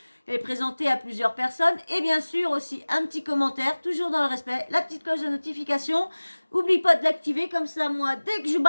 Elle est présentée à plusieurs personnes. Et bien sûr aussi un petit commentaire, toujours dans le respect, la petite cloche de notification. Oublie pas de l'activer, comme ça moi, dès que je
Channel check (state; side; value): inverted; both; correlation -1.00